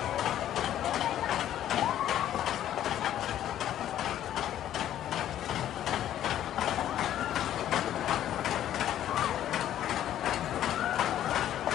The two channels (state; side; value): quieter; right; 11.6 dB